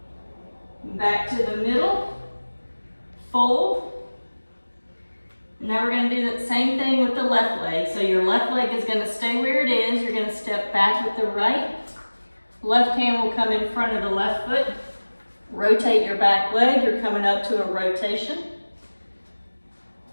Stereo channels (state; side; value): inverted; both; correlation -1.00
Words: Back to the middle. Fold. Now we're going to do that same thing with the left leg. So your left leg is going to stay where it is. You're going to step back with the right. Left hand will come in front of the left foot. Rotate your back leg. You're coming up to a rotation.